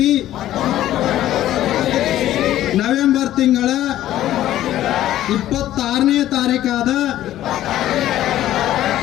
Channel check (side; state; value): right; quieter; 13.3 dB